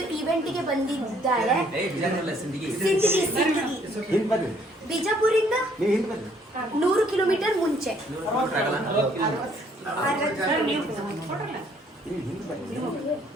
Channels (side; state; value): both; normal; correlation 0.64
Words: ಇವೆಂಟ್ಗೆ ಬಂದಿದ್ದಾರೆ. ಬಿಜಾಪುರಿಂದ 100 ಕಿಲೋಮೀಟರ್ ಮುಂಚೆ.